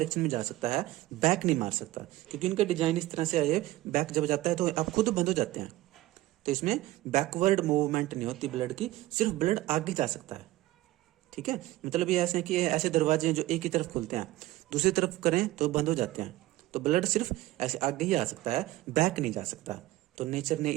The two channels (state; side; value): quieter; left; 16.8 dB